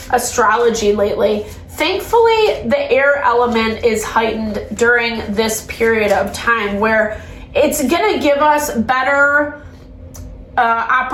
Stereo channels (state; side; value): identical; both; correlation 1.00